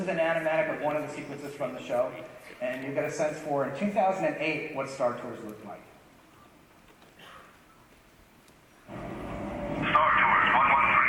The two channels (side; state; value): both; identical; correlation 1.00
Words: is an animatic of one of the sequences from the show, and you get a sense for, in 2008, what Star Tours looked like.